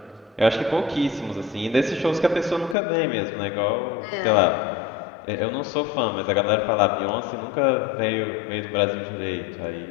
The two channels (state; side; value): drops out; right; at 2.8 s